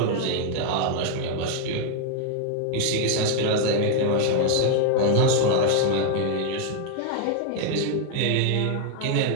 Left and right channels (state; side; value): different; both; correlation 0.00